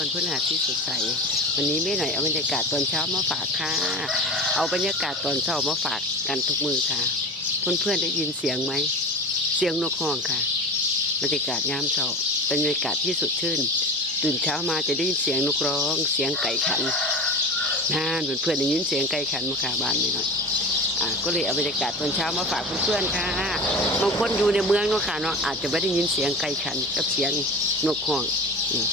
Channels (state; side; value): normal; both; correlation 0.31